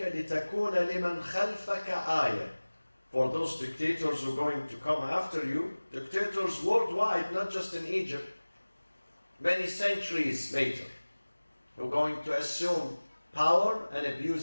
لِتَكُونَ لِمَنْ خَلْفَكَ آيَةً. For those dictators who are going to come after you, dictators worldwide, not just in Egypt, many centuries later, who are going to assume power and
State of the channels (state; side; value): inverted; both; correlation -1.00